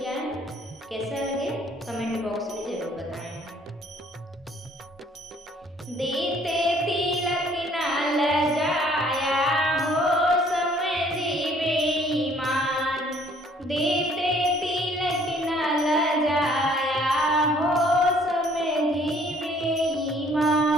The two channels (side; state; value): both; normal; correlation 0.59